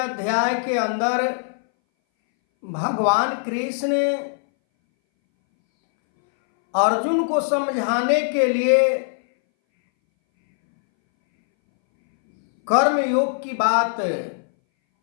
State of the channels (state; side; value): silent; right; 62 dB below the other